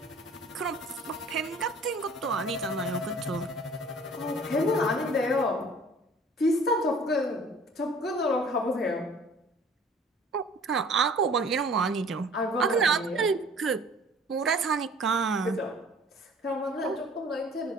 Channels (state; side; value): normal; both; correlation 0.50